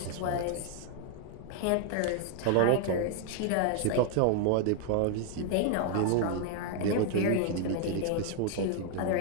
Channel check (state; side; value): different; both; correlation 0.00